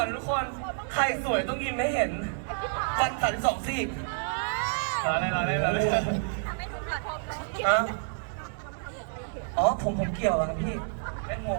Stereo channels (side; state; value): left; silent; digital silence